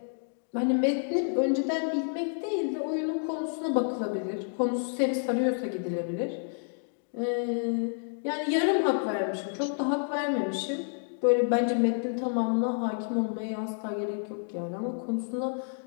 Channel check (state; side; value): silent; right; digital silence